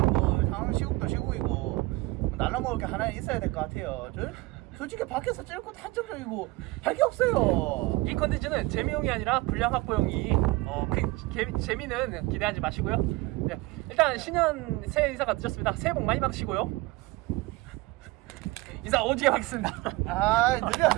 상황 시국도 시국이고 날라 먹을 게 하나 있어야 될 것 같아요. 솔직히 밖에서 찔고 한정적이고 할 게 없어요. 이 컨텐츠는 재미용이 아니라 분량 확보용이 재미는 기대하지 마시고요. 네, 일단 신년 새해 인사가 늦었습니다. 새해 복 많이 받으시고요. 인사 오지게 하겠습니다. 아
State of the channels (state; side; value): quieter; left; 21.2 dB